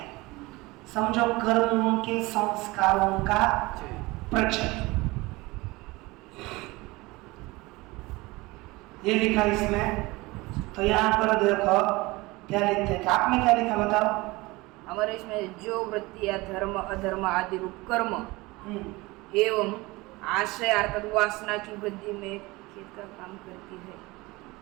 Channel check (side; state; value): left; quieter; 22.1 dB